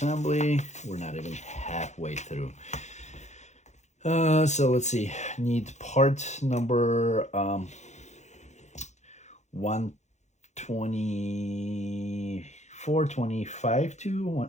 We're not even halfway through. So let's see. Need part number 124, 25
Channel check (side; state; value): right; late; 0.33 ms